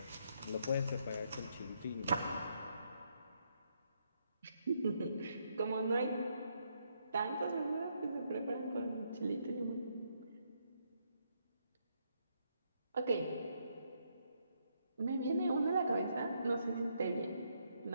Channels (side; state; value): both; inverted; correlation -0.76